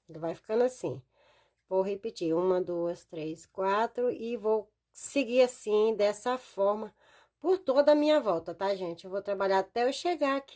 Ele vai ficando assim. Vou repetir, 1, 2, 3, 4 e vou seguir assim, dessa forma, por toda a minha volta, tá, gente? Eu vou trabalhar até eu chegar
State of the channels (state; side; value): identical; both; correlation 1.00